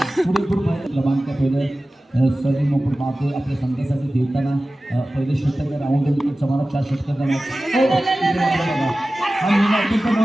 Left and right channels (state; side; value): normal; both; correlation 0.96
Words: पुरेपूर क्रमांक पहिलं सलीम आपण पाहतोय आपल्या संघासाठी देताना पहिले षटक राऊंड विकेटचा मारा 4 षटकाचा